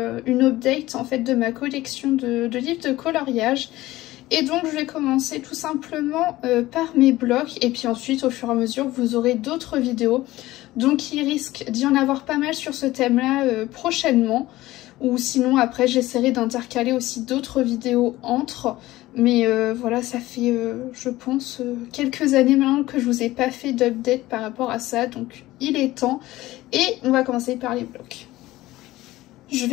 une update en fait de ma collection de livres de coloriage. Et donc je vais commencer tout simplement par mes blocs et puis ensuite au fur et à mesure vous aurez d'autres vidéos. Donc il risque d'y en avoir pas mal sur ce thème là prochainement. Ou sinon après j'essaierai d'intercaler aussi d'autres vidéos entre. Mais voilà, ça fait je pense quelques années maintenant que je vous ai pas fait d'update par rapport à ça. Donc il est temps. Et on va commencer par les blocs. Je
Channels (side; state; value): right; quieter; 17.1 dB